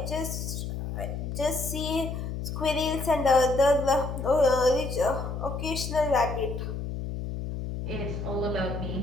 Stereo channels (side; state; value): left; noise; hum, 5 dB below the sound